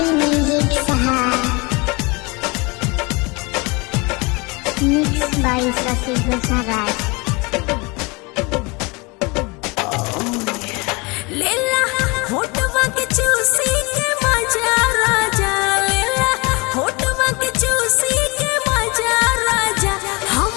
म्यूजिक सहार मिक्स बाय शशि भूषण राज। लेला होठवा के चूसी के मजा राजा, लेला होठवा के चूसी के मजा राजा,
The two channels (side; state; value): right; quieter; 27.0 dB